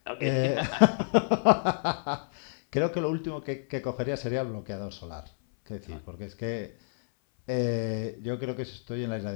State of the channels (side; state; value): right; silent; 58 dB below the other